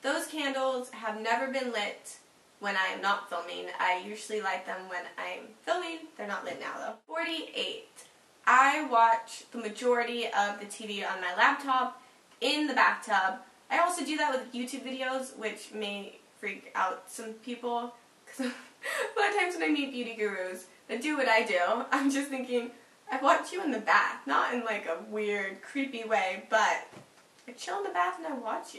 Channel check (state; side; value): identical; both; correlation 1.00